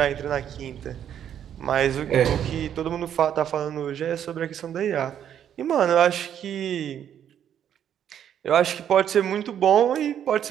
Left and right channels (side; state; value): left; quieter; 9.6 dB